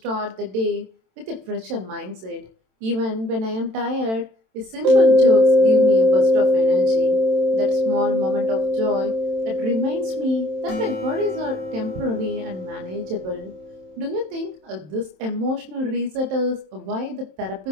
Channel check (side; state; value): left; late; 27 ms